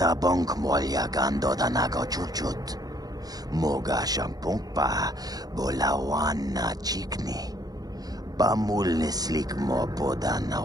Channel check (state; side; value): late; left; 0.19 ms